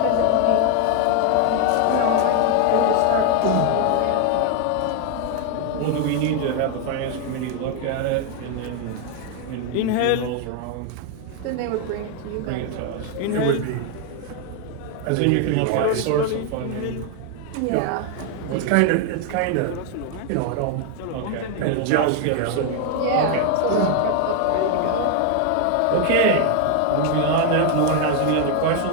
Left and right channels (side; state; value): both; different; correlation 0.01